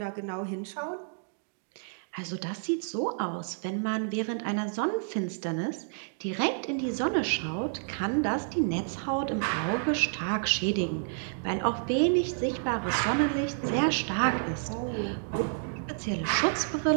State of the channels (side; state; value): left; silent; digital silence